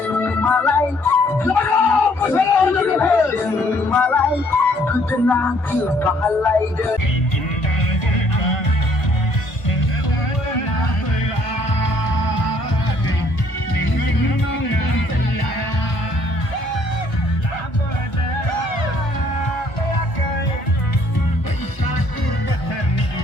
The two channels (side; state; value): right; late; 1.2 ms